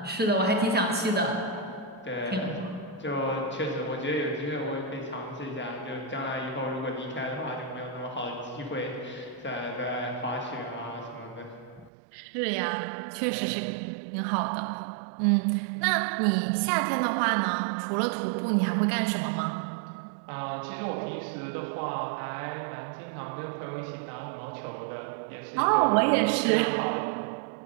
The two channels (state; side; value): drops out; left; at 11.9 s